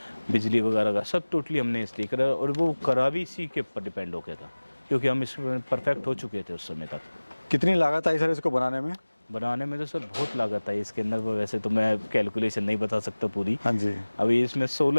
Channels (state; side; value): inverted; both; correlation -1.00